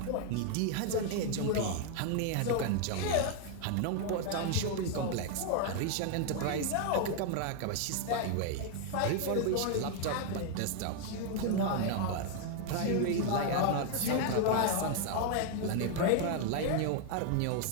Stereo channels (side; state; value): both; different; correlation 0.00